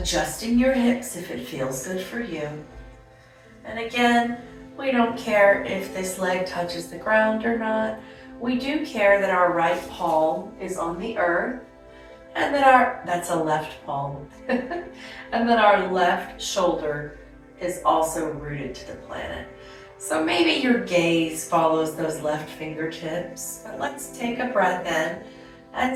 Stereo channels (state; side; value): identical; both; correlation 1.00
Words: your hips if it feels good for you. And again, we don't care if this leg touches the ground or not. We do care that our right palm is on the earth and that that's a left palm, and that our left shoulder is also rooted to the planet. So maybe your gaze follows those left fingertips, but let's take a breath in